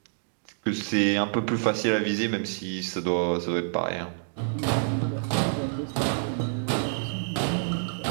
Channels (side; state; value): left; silent; digital silence